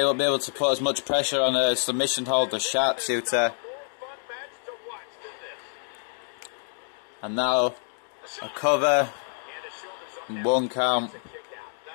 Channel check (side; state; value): right; silent; 60 dB below the other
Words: won't be able to put as much pressure on a submission hold or sharpshooter. And now a cover. 1 count.